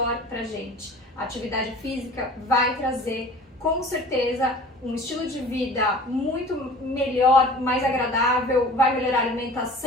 pra gente. A atividade física vai trazer, com certeza, um estilo de vida muito melhor, mais agradável, vai melhorar a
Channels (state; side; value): normal; both; correlation 0.43